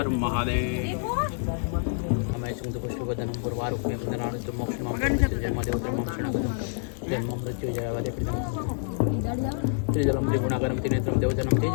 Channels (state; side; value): silent; right; digital silence